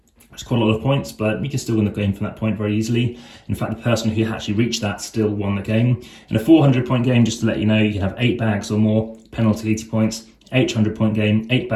It's quite a lot of points, but you can still win the game from that point very easily. In fact, the person who actually reached that still won the game. In a 400-point game, just to let you know, you can have 8 bags or more, penalty 80 points. 800-point game, 8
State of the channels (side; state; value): both; identical; correlation 1.00